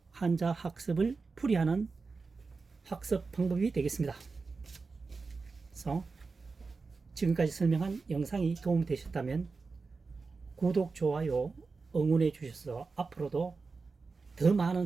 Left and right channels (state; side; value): quieter; left; 4.3 dB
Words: 한자 학습을 풀이하는 학습 방법이 되겠습니다. 그래서 지금까지 설명한 영상이 도움이 되셨다면 구독, 좋아요, 응원해 주셔서 앞으로도 더